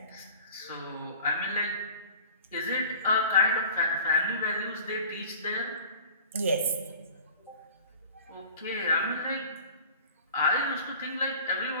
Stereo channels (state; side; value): inverted; both; correlation -0.42